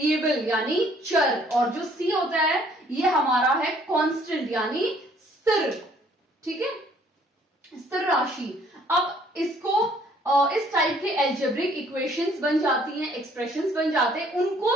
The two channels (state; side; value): normal; both; correlation 0.61